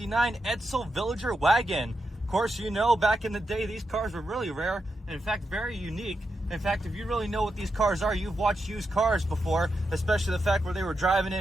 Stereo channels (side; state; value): both; normal; correlation 0.86